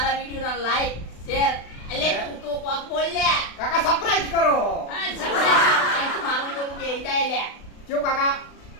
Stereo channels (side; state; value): right; late; 36 ms